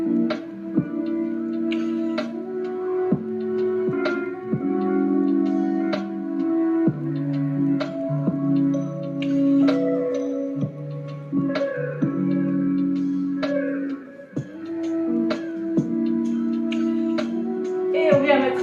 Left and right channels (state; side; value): identical; both; correlation 1.00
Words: Et on vient mettre